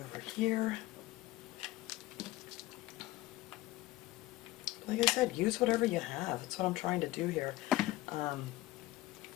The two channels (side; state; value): right; quieter; 17.3 dB